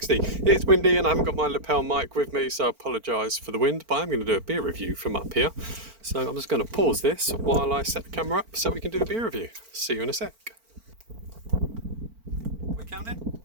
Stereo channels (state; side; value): late; left; 4.4 ms